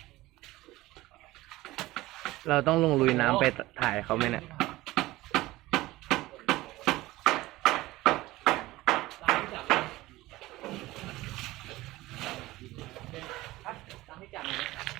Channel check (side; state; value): left; quieter; 18.3 dB